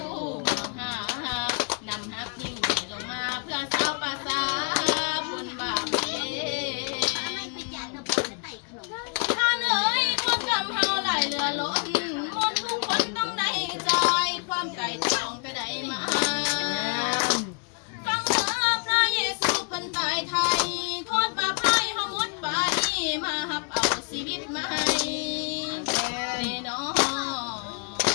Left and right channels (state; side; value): quieter; right; 39.6 dB